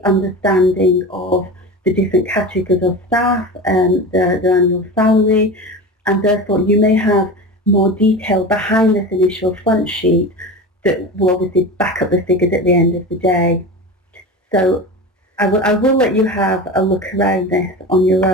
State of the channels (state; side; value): normal; both; correlation 0.28